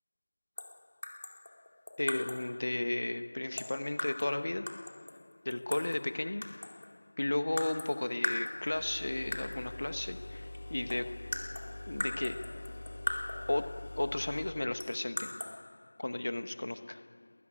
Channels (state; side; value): inverted; both; correlation -1.00